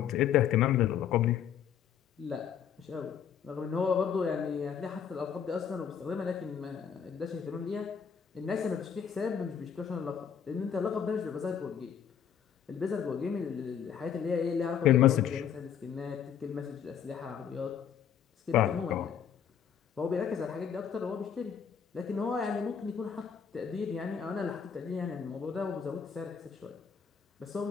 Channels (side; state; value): right; quieter; 8.0 dB